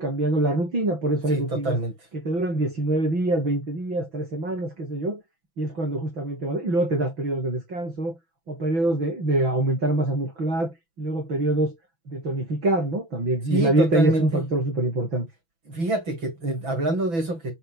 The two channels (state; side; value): late; left; 6.0 ms